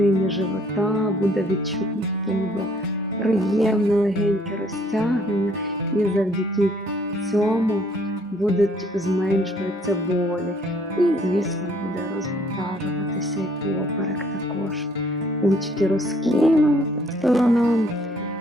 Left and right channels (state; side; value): normal; both; correlation 0.62